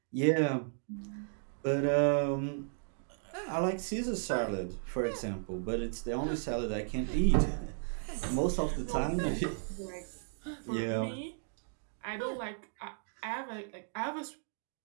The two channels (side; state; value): left; silent; digital silence